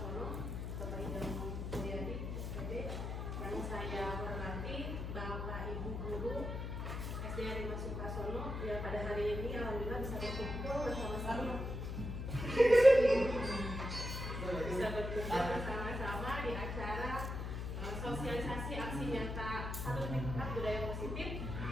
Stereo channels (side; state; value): left; noise; hum, 4 dB below the sound